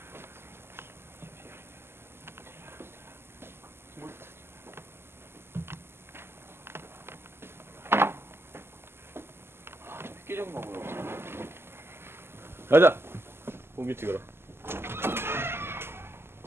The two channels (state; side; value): late; left; 0.12 ms